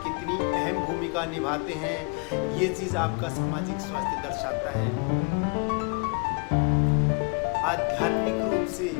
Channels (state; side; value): quieter; right; 33.2 dB